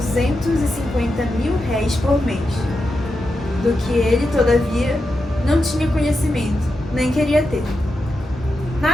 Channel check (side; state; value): both; normal; correlation 0.87